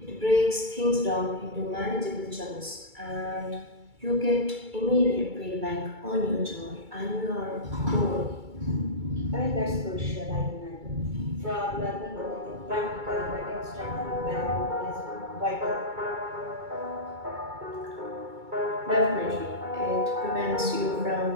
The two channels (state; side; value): late; left; 2.3 ms